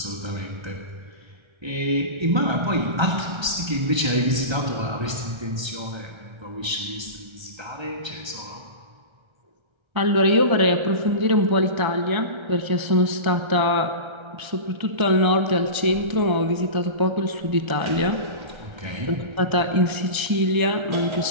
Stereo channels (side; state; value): left; late; 1.3 ms